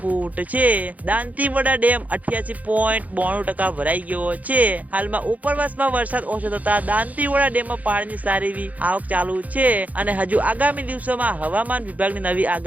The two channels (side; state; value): left; late; 0.075 ms